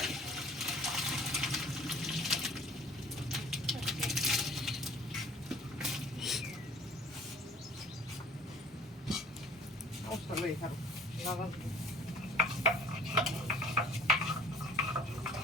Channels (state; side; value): normal; both; correlation 0.51